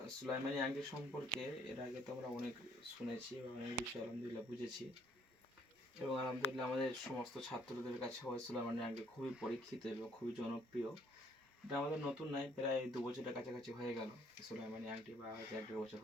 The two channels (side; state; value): both; normal; correlation 0.64